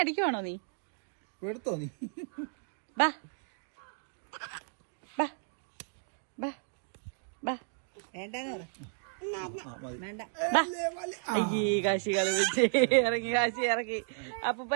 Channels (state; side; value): silent; left; digital silence